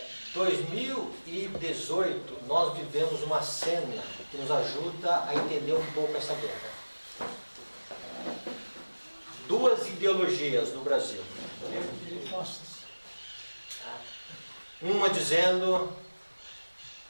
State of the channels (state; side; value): inverted; both; correlation -1.00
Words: 2018, nós vivemos uma cena que nos ajuda a entender um pouco essa guerra. Duas ideologias no Brasil. Uma dizendo